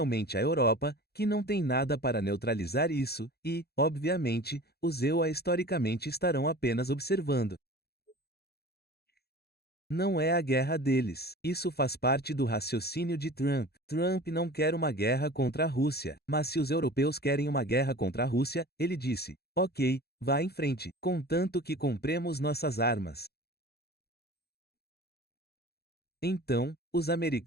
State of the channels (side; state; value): right; late; 0.46 ms